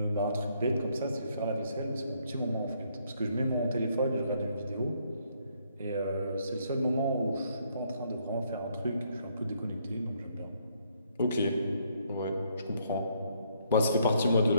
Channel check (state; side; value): inverted; both; correlation -0.70